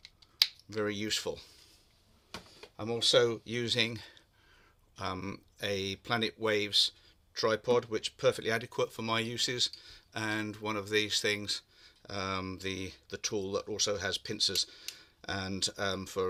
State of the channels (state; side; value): identical; both; correlation 1.00